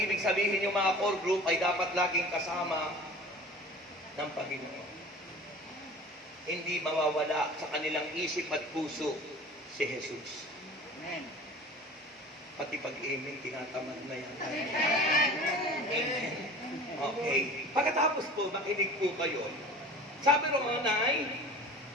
sabihin yung mga core group ay dapat laging kasama ng Panginoon. Hindi mawawala sa kanilang isip at puso si Jesus. Amen. Pati pag-amen, tinatamad na yan. Amen. Okay. Pagkatapos po, makinig po kayo. Sabi ron ay,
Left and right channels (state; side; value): normal; both; correlation 0.40